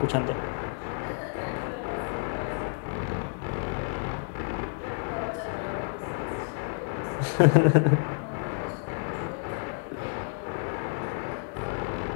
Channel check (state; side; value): silent; right; 58 dB below the other